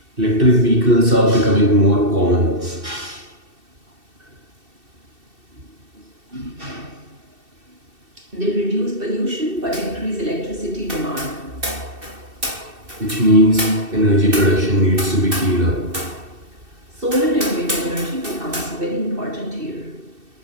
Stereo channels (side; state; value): left; late; 2.7 ms